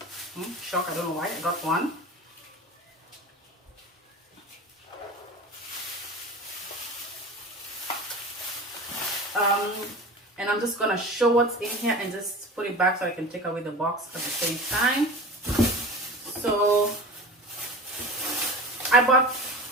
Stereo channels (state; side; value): normal; both; correlation 0.33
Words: Shock, I don't know why I got 1. And I'm just gonna show what's in here and just put it back so I can take away the box at the same time. So I bought